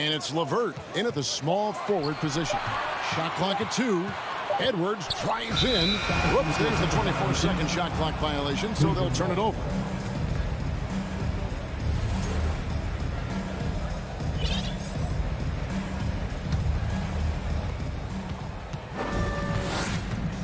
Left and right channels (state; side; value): identical; both; correlation 1.00